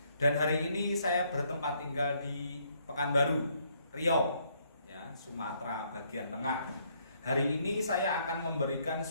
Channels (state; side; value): inverted; both; correlation -0.69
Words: Dan hari ini saya bertempat tinggal di Pekanbaru, Riau, ya, Sumatera bagian tengah. Hari ini saya akan memberikan